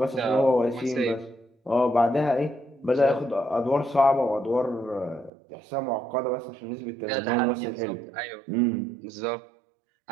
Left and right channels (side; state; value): left; drops out; at 5.3 s